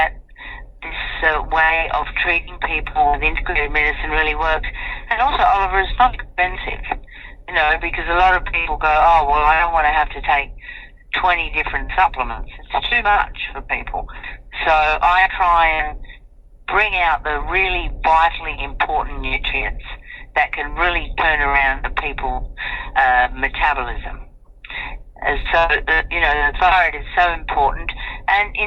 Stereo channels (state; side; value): identical; both; correlation 1.00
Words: this way of treating people with integrated medicine really works. And also, Oliver, it's not expensive, because a lot of people go, oh, well, I don't want to have to take 20 different supplements. It's too much for people. So I try and bring out the really vitally important nutrients that can really turn around the people's metabolism. And so, the thyroid is so important. And